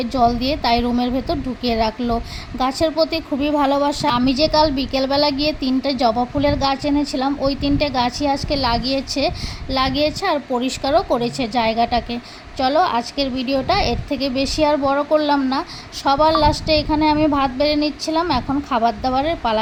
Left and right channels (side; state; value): both; identical; correlation 1.00